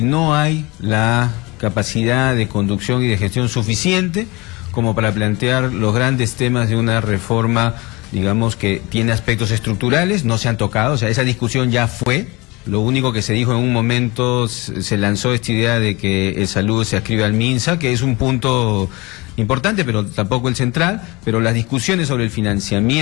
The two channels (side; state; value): right; quieter; 24.1 dB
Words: no hay la capacidad de conducción y de gestión suficiente como para plantear los grandes temas de una reforma, digamos, que tiene aspectos estructurales, no se han tocado. O sea, esa discusión ya fue. Lo único que se dijo en un momento, se lanzó esta idea de que salud se adscribe al MINSA, que es un punto importante, pero tampoco el central. Pero las discusiones sobre el